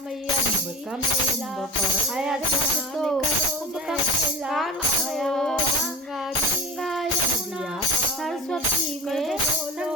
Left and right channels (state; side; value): normal; both; correlation 0.31